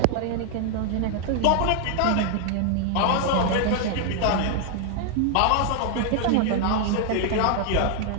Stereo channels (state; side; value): different; both; correlation 0.00